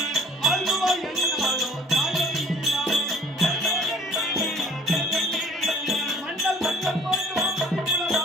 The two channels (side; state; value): both; normal; correlation 0.51